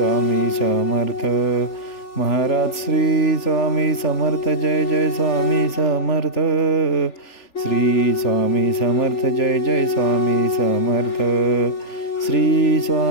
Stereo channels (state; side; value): late; right; 3.4 ms